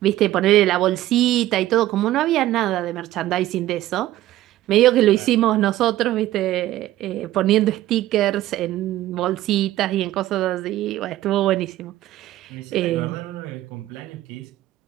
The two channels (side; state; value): left; quieter; 14.7 dB